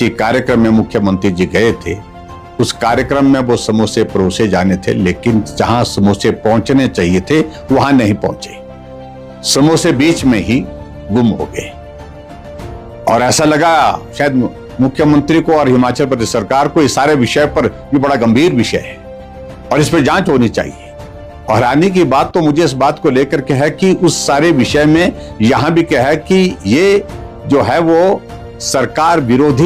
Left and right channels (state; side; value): identical; both; correlation 1.00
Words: कार्यक्रम में मुख्यमंत्री जी गए थे, उस कार्यक्रम में वो समोसे परोसे जाने थे, लेकिन जहां समोसे पहुंचने चाहिए थे वहां नहीं पहुंचे, समोसे बीच में ही गुम हो गए। और ऐसा लगा शायद मुख्यमंत्री को और हिमाचल प्रदेश सरकार को इस सारे विषय पर ये बड़ा गंभीर विषय है और इस पर जांच होनी चाहिए। और हैरानी की बात तो मुझे इस बात को लेकर के है कि उस सारे विषय में यहां भी क्या है कि ये जो है वो सरकार